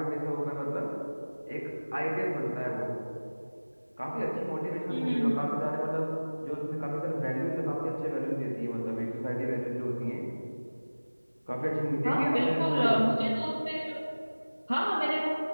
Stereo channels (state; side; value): inverted; both; correlation -1.00